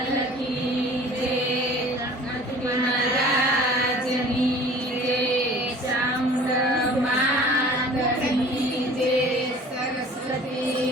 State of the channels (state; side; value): normal; both; correlation 0.47